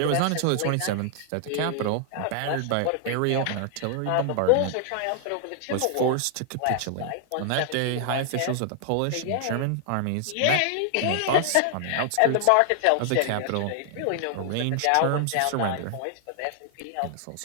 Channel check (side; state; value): both; different; correlation -0.01